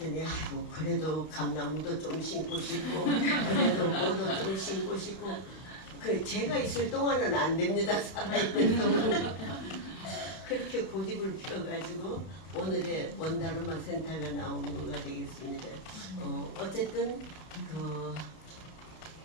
아이고 그래도 감나무도 좀 심고 싶고 그래도 뭐도 좀 심고 싶고 그 제가 있을 동안은 안 됩니다. 살아있는 동안은 그렇게 고집을 피워가지고 오늘의 원다르마 센터가 나온 거가 되겠습니다. 어쨌든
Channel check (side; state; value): right; late; 31 ms